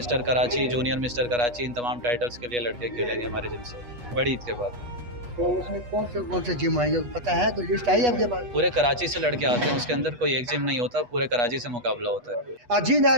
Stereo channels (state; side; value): late; left; 8.2 ms